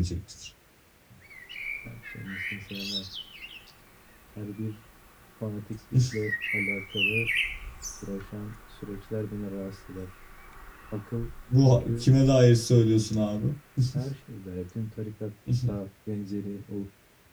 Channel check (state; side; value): identical; both; correlation 1.00